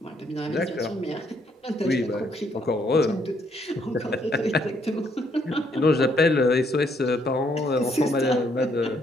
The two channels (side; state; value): both; normal; correlation 0.70